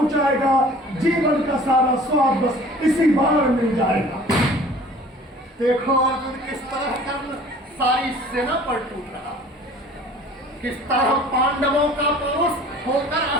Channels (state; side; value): normal; both; correlation 0.48